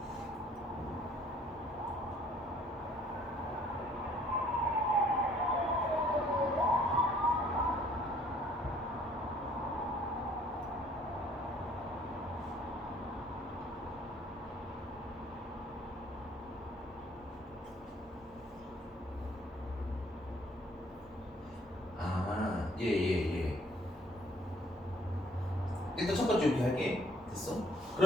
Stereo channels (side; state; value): both; normal; correlation 0.60